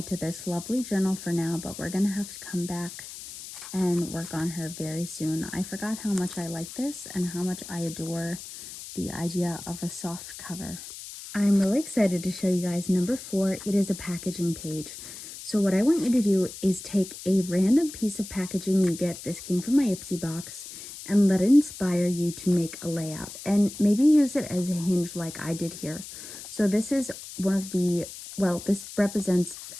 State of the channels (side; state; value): left; noise; hiss, 12 dB below the sound